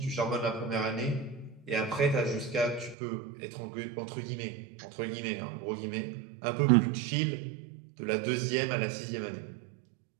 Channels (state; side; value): drops out; left; at 3.0 s